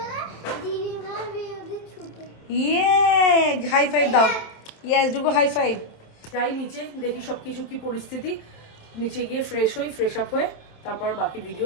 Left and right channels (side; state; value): right; late; 27 ms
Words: ইয়ে, হাই ফাইভ দাও। ইয়েস, ডুগো হাই ফাইভ। যাই নিচে, দেখি সব কিছু কি পরিস্থিতি। নিচে গিয়ে ফ্রেশ আপ হয়ে তারপর বাকি ভিডিও